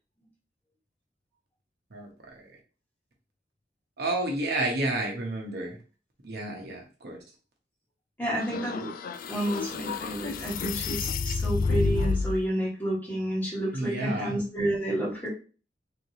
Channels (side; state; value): both; normal; correlation 0.68